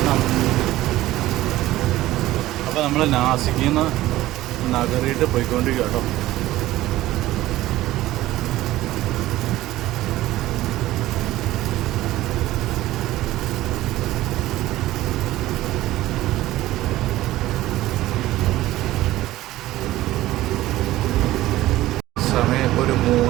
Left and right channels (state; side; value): quieter; left; 15.9 dB